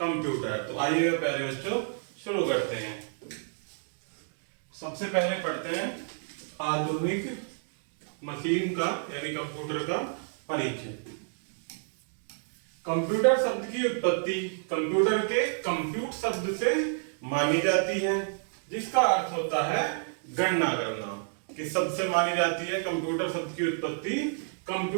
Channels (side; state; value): left; silent; digital silence